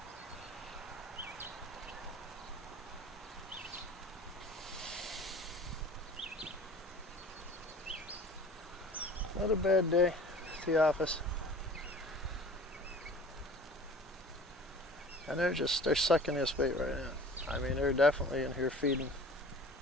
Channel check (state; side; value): normal; both; correlation 0.44